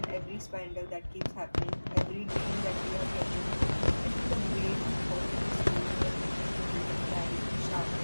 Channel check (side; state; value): both; inverted; correlation -1.00